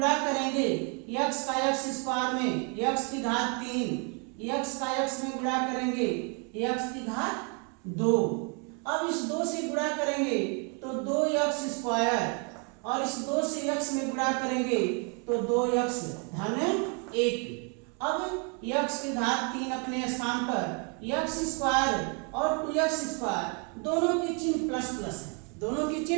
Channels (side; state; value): left; quieter; 36.2 dB